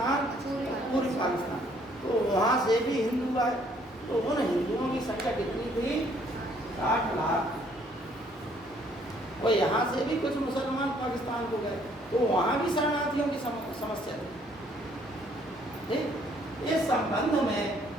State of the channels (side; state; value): both; normal; correlation 0.64